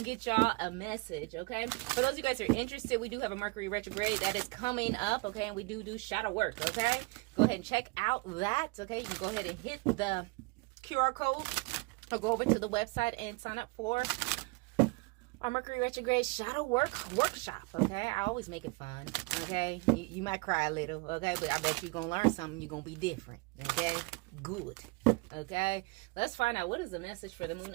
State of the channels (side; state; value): left; quieter; 27.0 dB